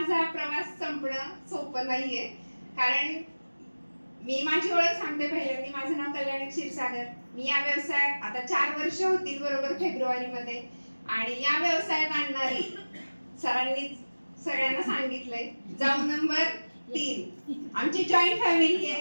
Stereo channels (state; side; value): inverted; both; correlation -1.00